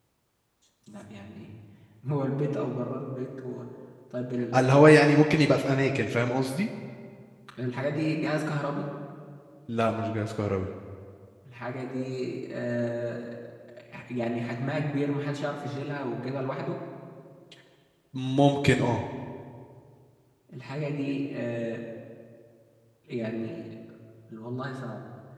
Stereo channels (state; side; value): identical; both; correlation 1.00